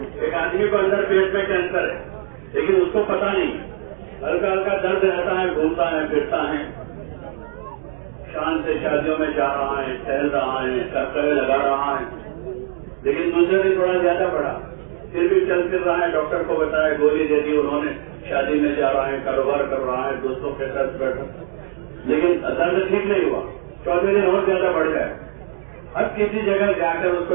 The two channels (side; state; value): left; silent; 65 dB below the other